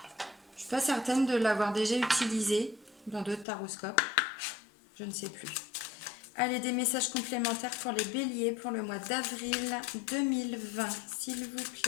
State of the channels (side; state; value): right; drops out; at 3.5 s